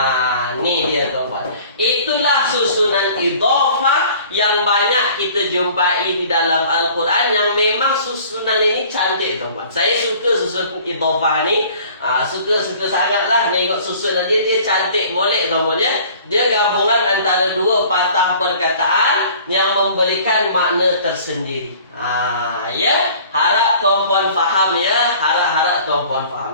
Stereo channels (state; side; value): inverted; both; correlation -0.49